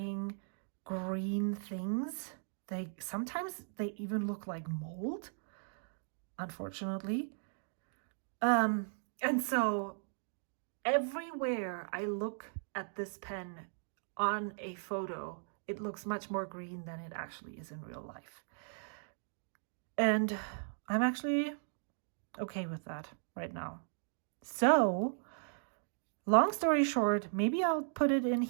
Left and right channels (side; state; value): left; silent; digital silence